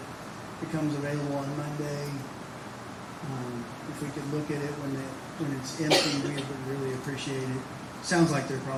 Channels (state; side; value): identical; both; correlation 1.00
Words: Becomes available on Monday. If we could look at it when it's empty, we would really appreciate it. Sounds like they're